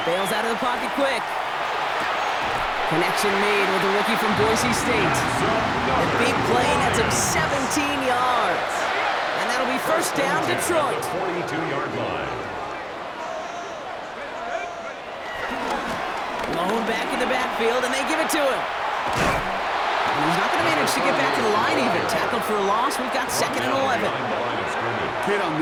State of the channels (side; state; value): both; identical; correlation 1.00